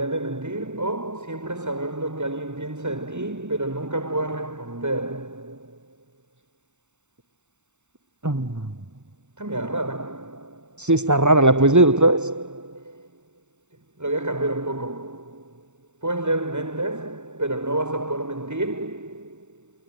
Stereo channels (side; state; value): left; late; 0.84 ms